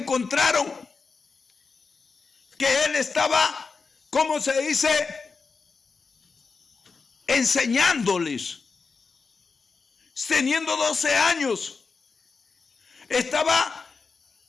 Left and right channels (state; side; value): quieter; right; 4.7 dB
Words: que él estaba, ¿cómo se dice?, enseñándoles, teniendo 12 años, estaba